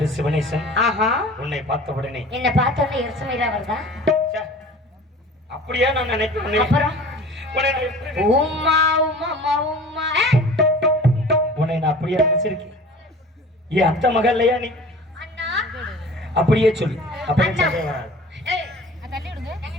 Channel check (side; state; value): both; normal; correlation 0.43